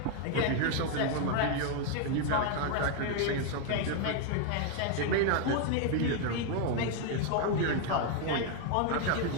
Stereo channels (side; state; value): both; different; correlation 0.01